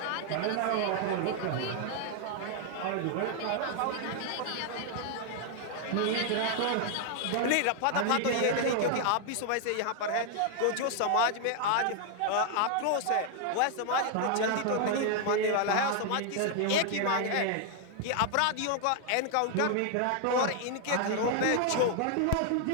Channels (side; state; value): both; different; correlation 0.00